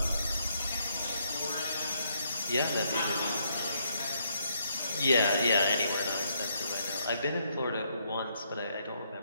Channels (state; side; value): inverted; both; correlation -0.74